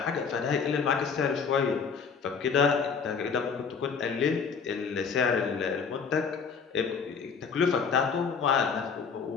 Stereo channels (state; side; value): quieter; right; 5.8 dB